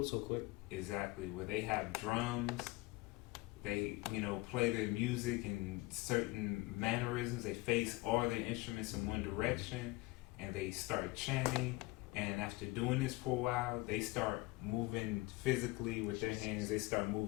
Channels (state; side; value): quieter; right; 21.9 dB